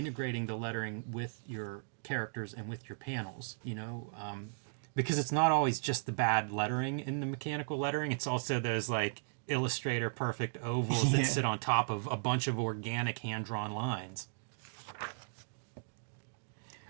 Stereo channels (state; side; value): silent; left; digital silence